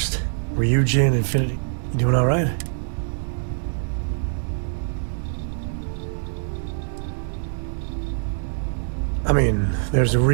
Ryujin, Infinity. You doing all right? I mean, there's a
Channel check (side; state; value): left; silent; digital silence